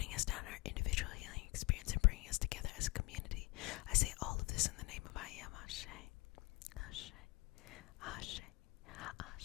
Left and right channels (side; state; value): right; quieter; 22.6 dB